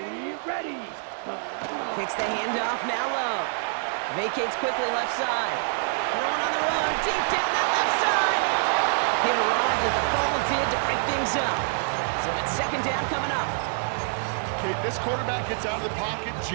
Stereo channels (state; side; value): silent; left; digital silence